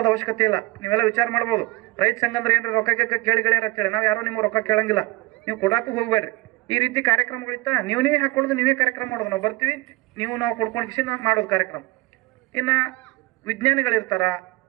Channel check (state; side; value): quieter; left; 20.8 dB